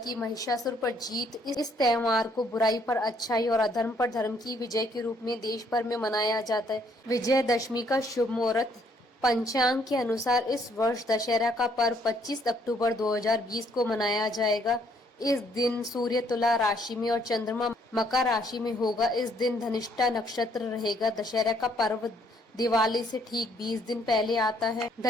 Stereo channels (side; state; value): both; normal; correlation 0.67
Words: महिषासुर पर जीत। इस त्योहार को बुराई पर अच्छाई और अधर्म पर धर्म की विजय के रूप में देश भर में मनाया जाता है। विजयदशमी का शुभ मुहूर्त पंचांग के अनुसार इस वर्ष दशहरा का पर्व 25 अक्टूबर 2020 को मनाया जाएगा। इस दिन सूर्य तुला राशि में और चंद्रमा मकर राशि में होगा। इस दिन धनिष्ठा नक्षत्र रहेगा। दशहरा का पर्व दिवाली से ठीक 20 दिन पहले आता है।